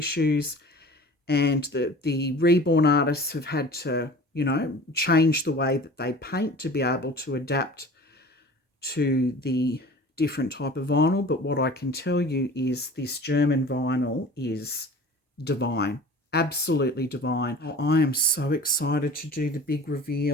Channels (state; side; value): normal; both; correlation 0.42